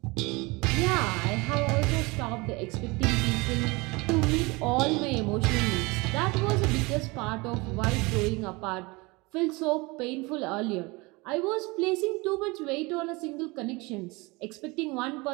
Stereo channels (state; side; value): quieter; left; 25.0 dB